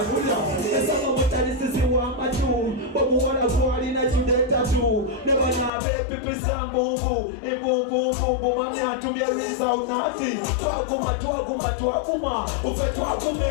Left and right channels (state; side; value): drops out; right; at 5.7 s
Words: boo. Never know baby people sound boo boo. If boo boo boo boo, mommy had to be a result naughty. Tuaguma, tuaguma, tuaguma. Ufe tuagume,